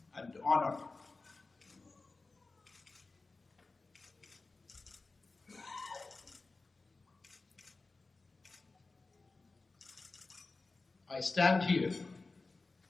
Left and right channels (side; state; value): right; quieter; 3.6 dB